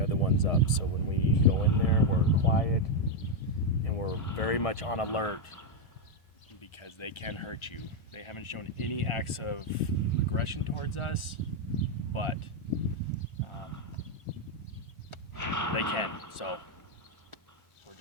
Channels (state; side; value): late; right; 1.4 ms